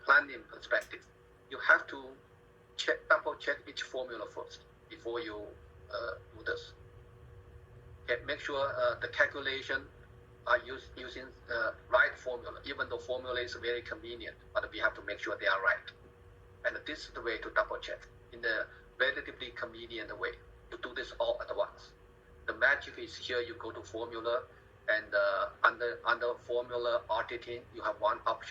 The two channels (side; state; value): both; identical; correlation 1.00